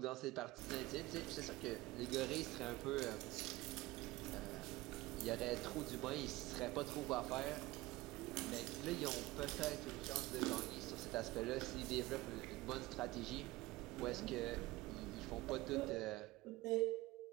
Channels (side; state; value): left; quieter; 19.3 dB